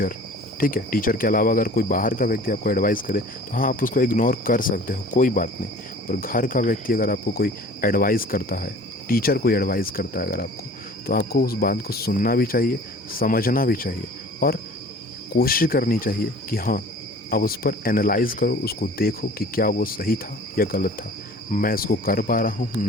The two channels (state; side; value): normal; both; correlation 0.46